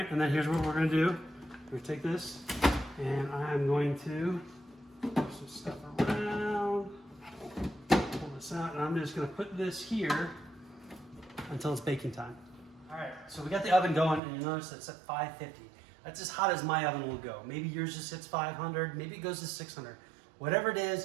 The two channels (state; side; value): drops out; left; at 14.2 s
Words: and then here's what we're gonna do. We're gonna take this, and I'm going to put some stuff around, pull this out, and I'm just gonna put this here until it's baking time. All right, so we got the oven going, and you'll notice it's at 550. That's as hot as my oven will go. Maybe yours just hits 500, maybe it goes to 600. Whatever it